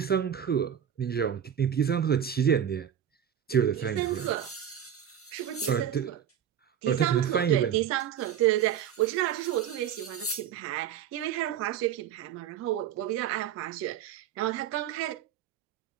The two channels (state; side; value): quieter; left; 9.4 dB